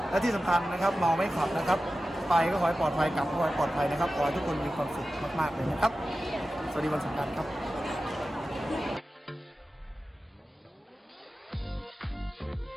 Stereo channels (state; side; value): normal; both; correlation 0.94